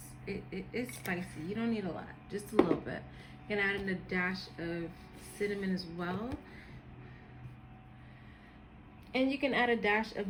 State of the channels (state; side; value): identical; both; correlation 1.00